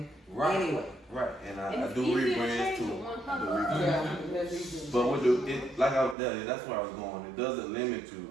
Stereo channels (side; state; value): left; drops out; at 6.2 s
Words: right, anyway. right, and And I it's do easier to rebrands change too. with one I do color. rebrands. Yeah, that's easy. But with like I was telling you, that's where I was going. It doesn't limit you.